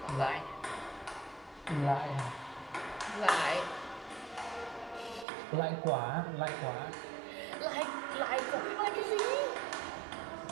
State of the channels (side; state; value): left; drops out; at 5.2 s